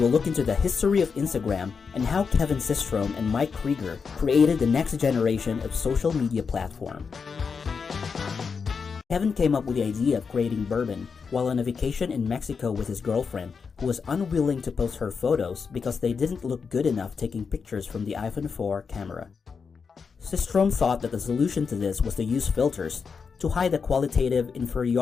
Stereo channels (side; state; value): right; quieter; 5.6 dB